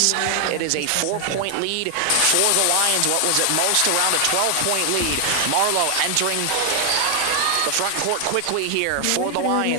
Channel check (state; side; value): different; both; correlation 0.00